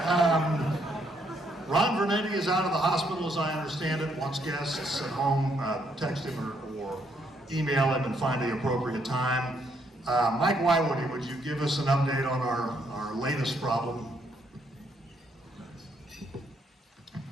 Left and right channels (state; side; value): normal; both; correlation 0.72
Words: Ron Vernetti is out of the hospital, as I understand it. Once guests at home text him or email him and find the appropriate time. Mike Woiwode, would you give us an update on our latest problem?